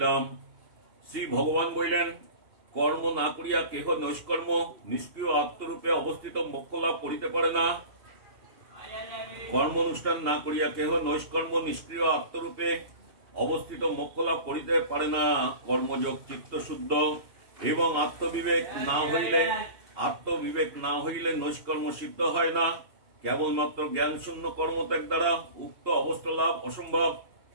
শ্রী ভগবান বললেন কর্ম না করিয়া কেহ নৈষ্কর্ম নিষ্ক্রিয় আত্মরূপে অবস্থিত মোক্ষ লাভ করিতে পারে না। কর্ম অনুষ্ঠান না করিয়া কেহ নৈষ্কর্ম নিষ্ক্রিয় আত্মরূপে অবস্থিত মোক্ষ লাভ করিতে পারে না। কর্মযোগ চিত্ত শুদ্ধ এবং আত্মবিবেক না হইলে নৈষ্কর্ম সিদ্ধ হয় না। কেবলমাত্র জ্ঞান শূন্য কর্মত্যাগ দ্বারা উক্ত অবস্থা লাভ অসম্ভব।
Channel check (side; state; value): left; late; 2.8 ms